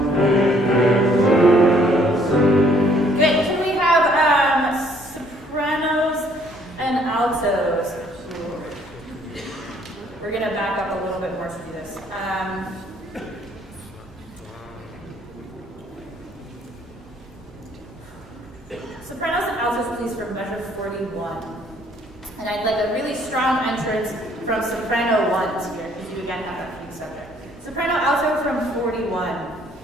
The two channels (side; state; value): both; normal; correlation 0.63